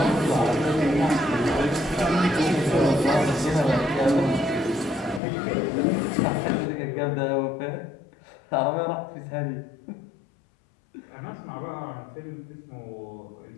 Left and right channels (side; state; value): right; drops out; at 5.2 s